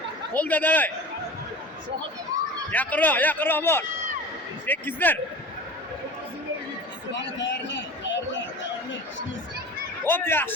Qo'lda davay. Yaqinroq bor. Tekkizdir. Hop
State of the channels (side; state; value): both; normal; correlation 0.36